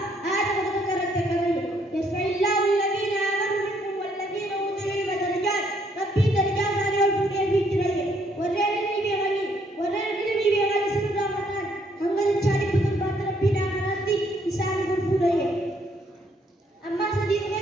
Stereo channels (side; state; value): both; normal; correlation 0.69